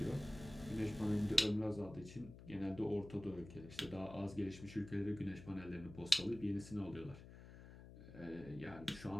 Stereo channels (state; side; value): noise; left; hum, 15 dB below the sound